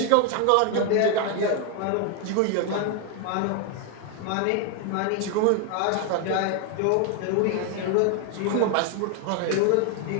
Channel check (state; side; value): different; both; correlation 0.01